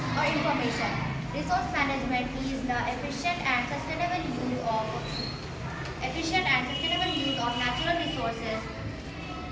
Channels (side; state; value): both; identical; correlation 1.00